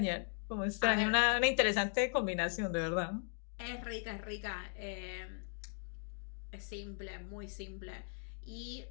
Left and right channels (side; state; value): right; silent; 52 dB below the other